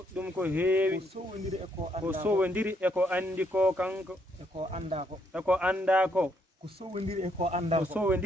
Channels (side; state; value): both; normal; correlation 0.73